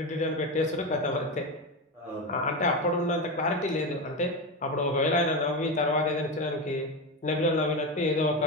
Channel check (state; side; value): normal; both; correlation 0.16